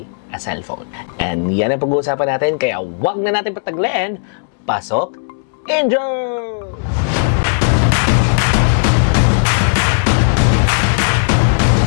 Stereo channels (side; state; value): right; silent; digital silence